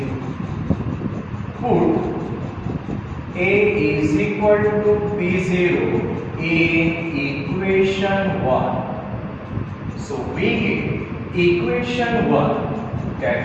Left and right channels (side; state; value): both; identical; correlation 1.00